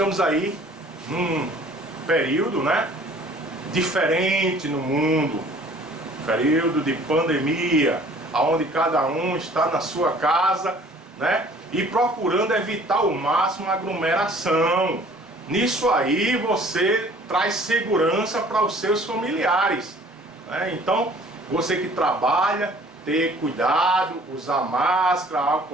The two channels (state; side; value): normal; both; correlation 0.53